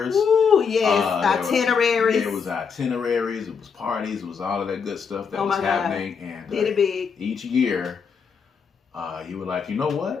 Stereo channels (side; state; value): right; quieter; 6.1 dB